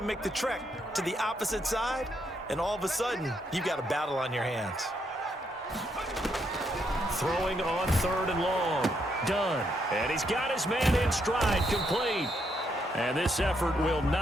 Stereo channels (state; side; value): normal; both; correlation 0.76